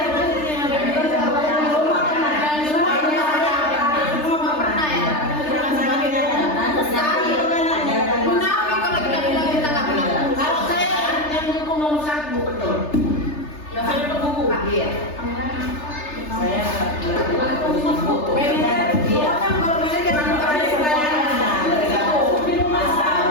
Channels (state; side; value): late; right; 3.3 ms